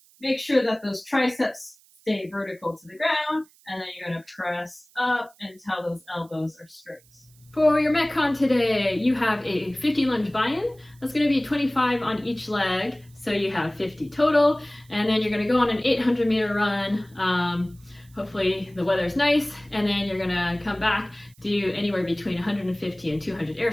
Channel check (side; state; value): right; noise; hiss, 29 dB below the sound